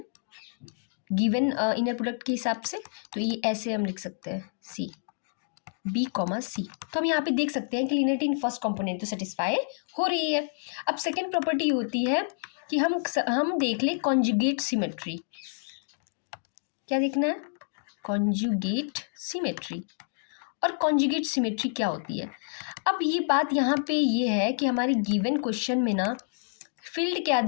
गिवन इनर प्रोडक्ट के हिसाब से। तो ये ऐसे हम लिख सकते हैं, सी बी कॉमा सी। तो हम यहाँ पे देख सकते हैं कि लीनियरिटी इन फर्स्ट कंपोनेंट तो सेटिस्फाई हो रही है। अब सेकेंड प्रॉपर्टी होती है कि हम देख ले कॉन्जुगेट सिमेट्री। क्या देखना है, कॉन्जुगेट सिमेट्री। और कॉन्जुगेट सिमेट्री क्या होती है, अब ये बात यहाँ पे ये है कि हमारे गिवन क्वेश्चन में ना फील्ड क्या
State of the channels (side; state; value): right; silent; digital silence